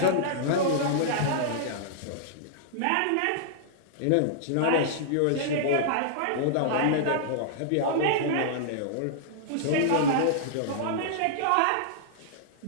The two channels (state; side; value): different; both; correlation -0.02